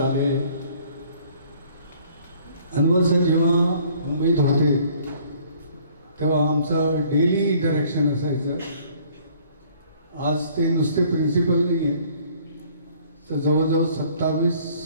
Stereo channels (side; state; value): both; inverted; correlation -0.58